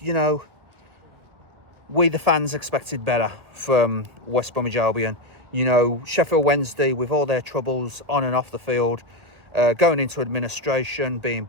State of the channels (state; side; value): late; left; 1.5 ms